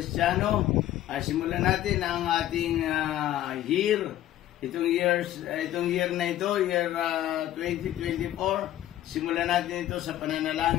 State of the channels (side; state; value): right; quieter; 13.1 dB